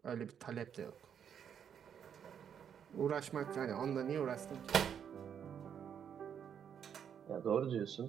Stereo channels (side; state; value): left; quieter; 8.2 dB